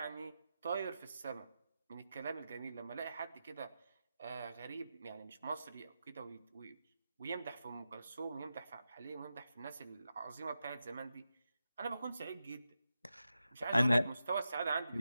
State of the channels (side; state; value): both; inverted; correlation -0.90